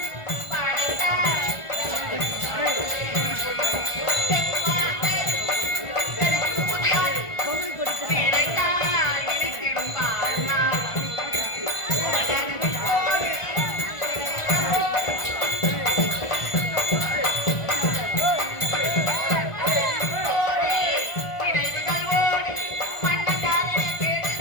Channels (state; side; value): late; right; 1.5 ms